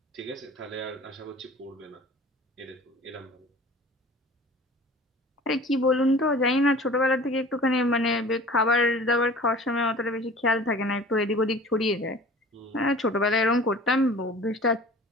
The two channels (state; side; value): normal; both; correlation 0.43